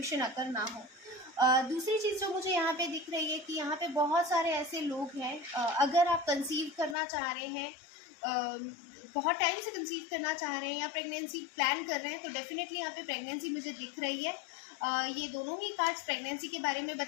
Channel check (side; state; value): right; drops out; at 7.0 s